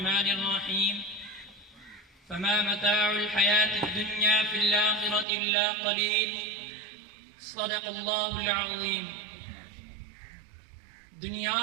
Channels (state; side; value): drops out; left; at 5.2 s